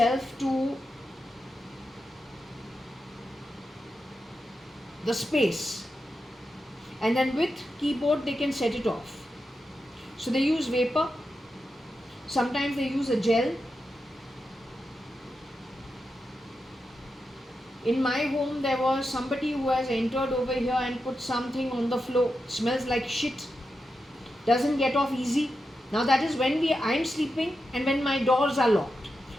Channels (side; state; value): both; normal; correlation 0.88